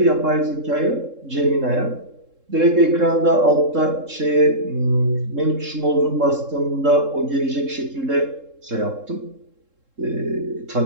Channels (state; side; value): late; left; 3.7 ms